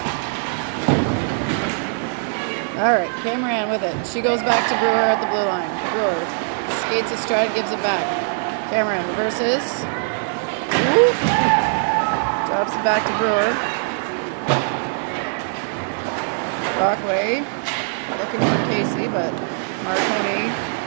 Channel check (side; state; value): left; silent; digital silence